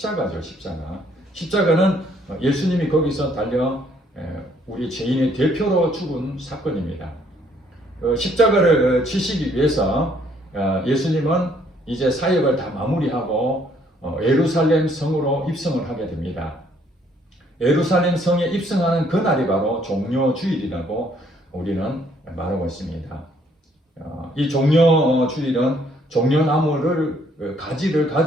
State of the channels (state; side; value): normal; both; correlation 0.65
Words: 십자가. 십자가는 예수님이 거기서 달려 우리 죄인의 대표로 죽은 사건입니다. 십자가를 치시기 위해서 예수님은 이제 사역을 다 마무리하고 예루살렘 성으로 입성을 하게 됩니다. 예루살렘 성에 입성하는 그날이 바로 종료 주일이라고 우리는 말하고 있습니다. 이 종료 주일은 종려나무를 가지를